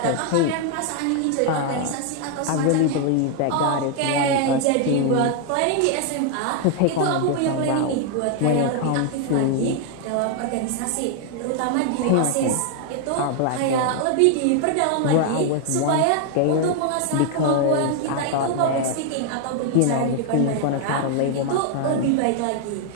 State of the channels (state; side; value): different; both; correlation 0.00